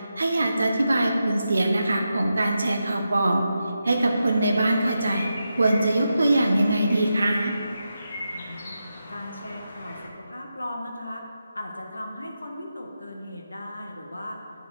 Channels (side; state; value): both; inverted; correlation -0.88